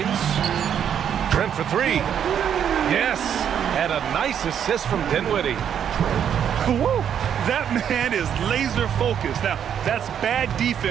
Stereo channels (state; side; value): quieter; left; 8.8 dB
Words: Trent for 3. Yes. And a nice assist from Dinwiddie. Woo! That man is laser focused. Now, that's bad